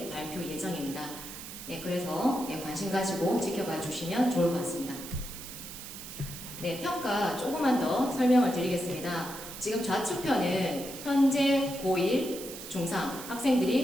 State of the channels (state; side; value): noise; right; hiss, 11 dB below the sound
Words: 발표 예정입니다. 그래서 관심 가지고 지켜봐 주시면 좋을 것 같습니다. 평가 조금만 더 설명을 드리겠습니다. 지금 좌측편은 현재 고1, 중3